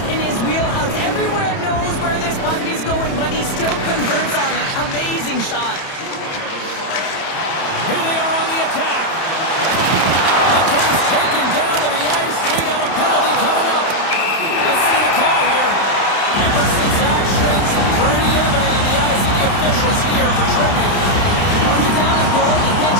in his wheelhouse. Everywhere knows where this puck is going, but he still converts on it. Amazing shot. Here they are on the attack. The game's taken down to the ice. We got a penalty coming up. Let's see the call here. Emerson's actions pretty evident in the eyes of the officials here for tripping. When you're down a goal, you can't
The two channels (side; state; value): right; late; 31 ms